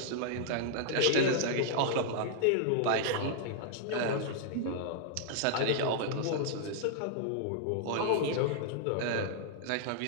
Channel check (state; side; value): different; both; correlation -0.01